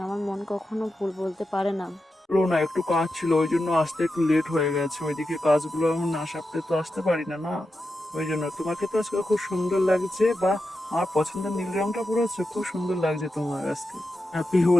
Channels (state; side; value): normal; both; correlation 0.89